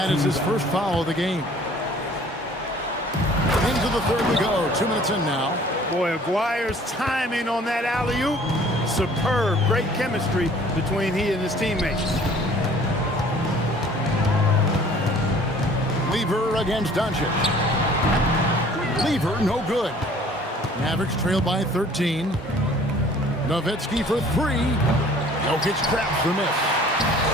is his first foul of the game. Into the 3rd we go. 2 minutes in now. Boy, Aguirre's timing on that alley-oop. Superb. Great chemistry between he and his teammates. Lever against Doncic. Lever, no good. Mavericks trail by 13. Nowitzki for 3. Jokic traps the miss.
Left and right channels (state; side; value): normal; both; correlation 0.52